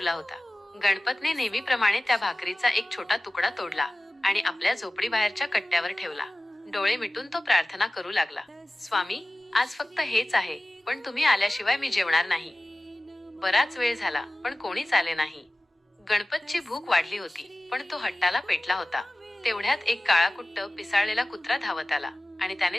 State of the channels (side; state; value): both; normal; correlation 0.96